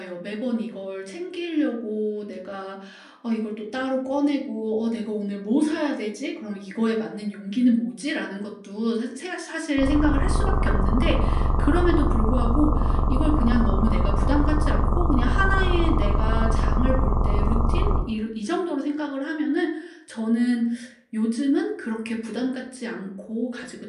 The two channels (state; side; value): identical; both; correlation 1.00